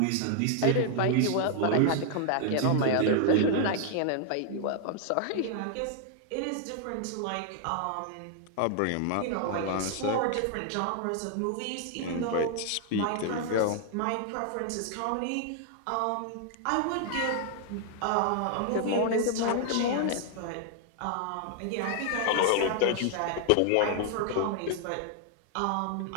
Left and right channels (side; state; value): both; different; correlation 0.00